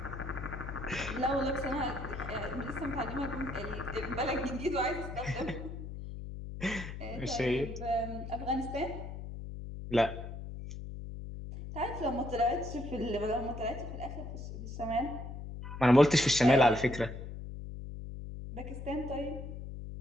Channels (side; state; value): left; noise; hum, 8 dB below the sound